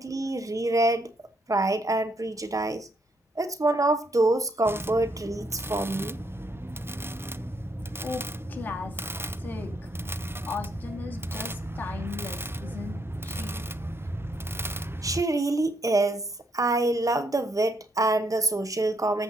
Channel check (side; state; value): both; normal; correlation 0.73